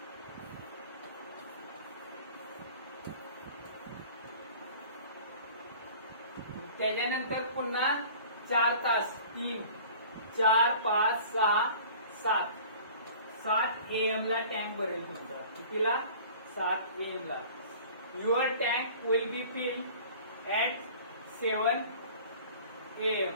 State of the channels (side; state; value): both; inverted; correlation -0.46